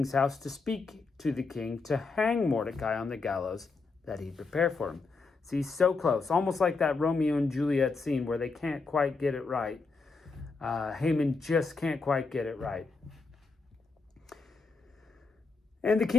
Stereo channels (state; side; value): quieter; right; 4.1 dB